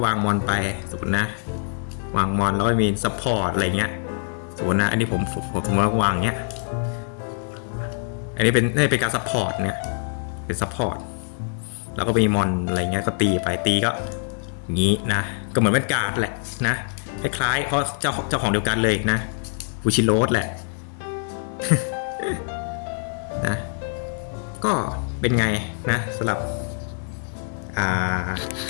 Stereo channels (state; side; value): silent; right; 63 dB below the other